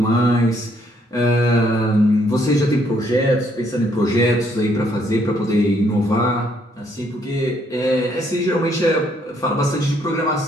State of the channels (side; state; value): both; normal; correlation 0.69